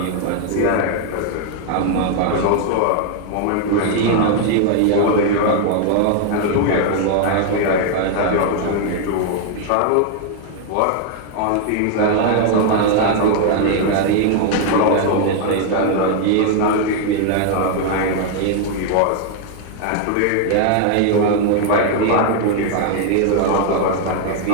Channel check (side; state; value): both; different; correlation 0.00